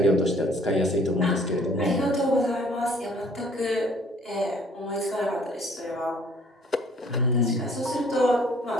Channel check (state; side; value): normal; both; correlation 0.58